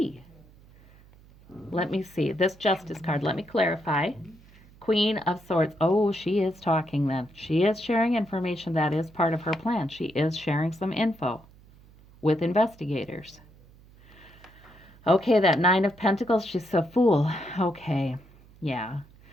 Let me see. This Justice card, let me clarify. Queen of Swords. Oh, she is talking then. She is sharing information that is part of her plan. She is sharing some info with investigators. Okay, that Nine of Pentacles, she's a fool. Okay, yeah.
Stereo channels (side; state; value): right; noise; hum, 25 dB below the sound